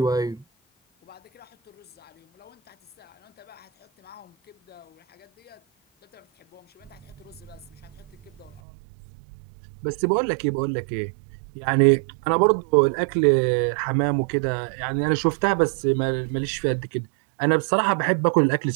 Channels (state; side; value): drops out; left; at 8.6 s